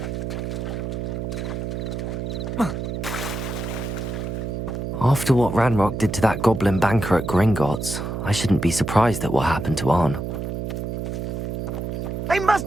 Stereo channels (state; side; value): noise; right; hum, 4 dB below the sound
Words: After what Ranrock did to that goblin banker at Gringotts, I shouldn't be surprised at what happened to Arn. They must